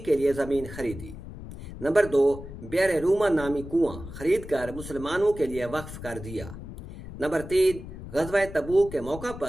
کے لیے زمین خریدی۔ نمبر 2، بئر روما نامی کنواں خرید کر مسلمانوں کے لیے وقف کر دیا۔ نمبر 3، غزوہ تبوک کے موقع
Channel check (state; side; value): noise; left; rumble, 12 dB below the sound